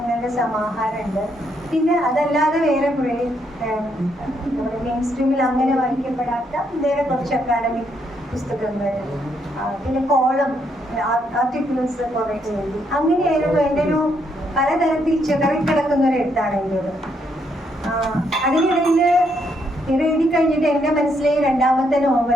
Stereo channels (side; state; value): both; normal; correlation 0.75